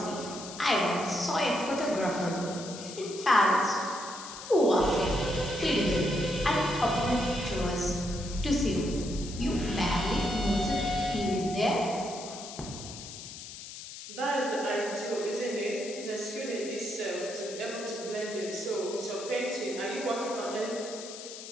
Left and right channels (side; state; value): left; noise; hiss, 12 dB below the sound